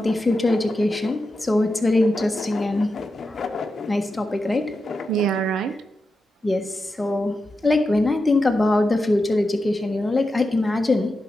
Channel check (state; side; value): normal; both; correlation 0.89